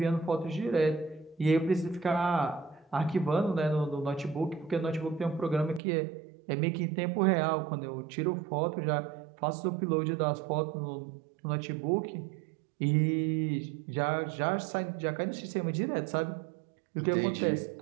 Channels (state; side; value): drops out; left; at 5.8 s